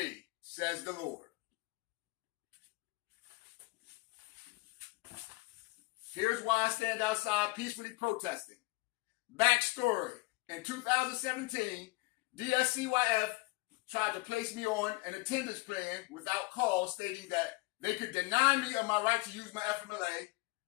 says the Lord. Here's why I stand outside peacefully protesting. Backstory. In 2017, Dscyf tried to place me on an attendance plan without cause, stating that they could deny me of my right to use my FMLA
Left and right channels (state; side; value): quieter; right; 24.4 dB